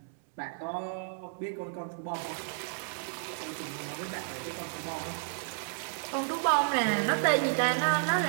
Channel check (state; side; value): silent; left; 56 dB below the other